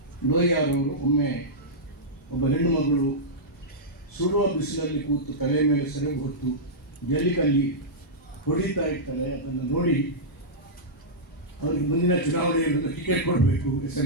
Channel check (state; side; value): normal; both; correlation -0.11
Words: ಲೋಹಿಯಾರವರು ಒಮ್ಮೆ ಒಬ್ಬ ಹೆಣ್ಣು ಮಗಳು ಸುಡುವ ಬಿಸಿಲಲ್ಲಿ ಕೂತು ತಲೆ ಮೇಲೆ ಸೆರಗು ಹೊತ್ತು ಜಲ್ಲಿಕಲ್ಲಿ ಹೊಡಿತಾ ಇರ್ತಾಳೆ. ಅದನ್ನು ನೋಡಿ ಅವ್ರಿಗೆ ಮುಂದಿನ ಚುನಾವಣೆಯಲ್ಲಿ ಟಿಕೆಟ್ ಕೊಡಬೇಕು